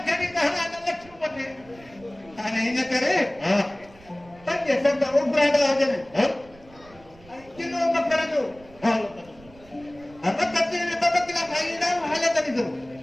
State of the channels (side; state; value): right; noise; rumble, 24 dB below the sound